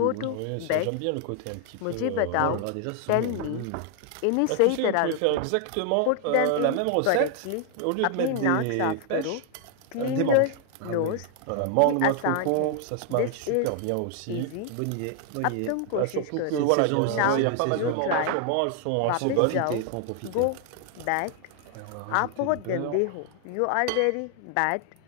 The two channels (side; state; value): both; different; correlation 0.00